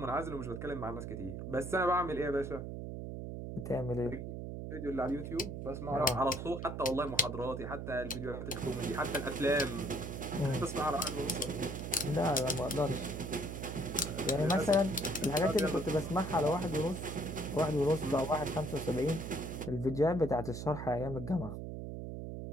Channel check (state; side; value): noise; right; hum, 6 dB below the sound